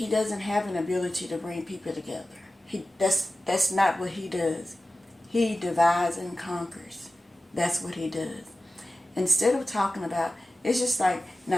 doesn't have an ability to bring people together. That's not what he does. He divides and conquers. That's what he does. Instead of talking about, it's just like,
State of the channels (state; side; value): normal; both; correlation 0.95